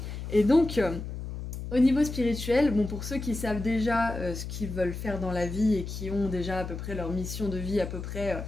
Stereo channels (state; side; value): noise; left; hum, 7 dB below the sound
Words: Et donc, au niveau spirituel, bon, pour ceux qui savent déjà ce qu'ils veulent faire dans la vie et qui ont déjà à peu près leur mission de vie à peu près